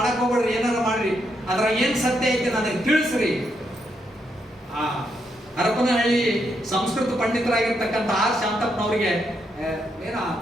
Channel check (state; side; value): normal; both; correlation 0.79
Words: ಹೋಗ್ಬೇಡ್ರಿ, ಏನಾರ ಮಾಡ್ರಿ, ಅದ್ರ ಏನ್ ಸತ್ಯ ಐತಿ ನನಗೆ ತಿಳಿಸ್ರಿ. ಆ ಹರಪನಹಳ್ಳಿ ಸಂಸ್ಕೃತ ಪಂಡಿತರಾಗಿರ್ತಕ್ಕಂಥ ಆರ್ ಶಾಂತಪ್ಪನವರಿಗೆ ಏನೋ